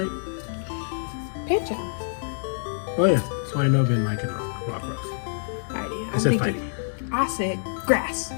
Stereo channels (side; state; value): right; silent; digital silence